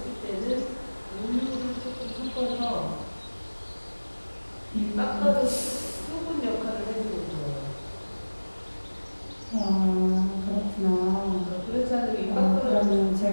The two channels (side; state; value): both; inverted; correlation -1.00